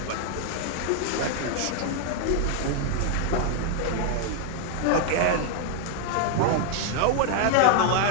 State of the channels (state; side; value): different; both; correlation 0.00